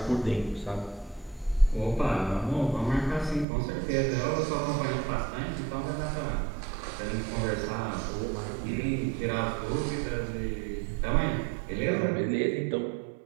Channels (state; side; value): drops out; left; at 3.5 s